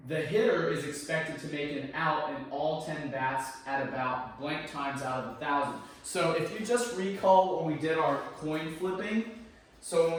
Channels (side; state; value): both; identical; correlation 1.00